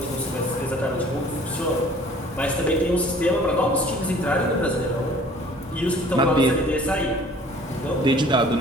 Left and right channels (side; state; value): both; normal; correlation 0.51